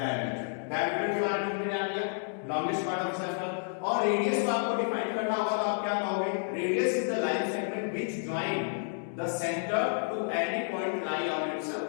Diameter के बारे में हमने जान लिया, लॉन्गेस्ट पार्ट ऑफ सर्कल। और रेडियस को आपको डिफाइन करना होगा, तो आप क्या कहोगे? Radius is the line segment which join the centre to any point lie on its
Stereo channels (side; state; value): right; silent; digital silence